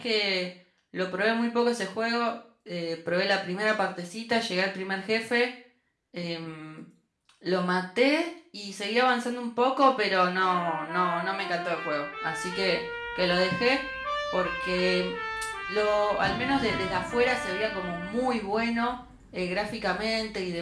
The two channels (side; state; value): both; identical; correlation 1.00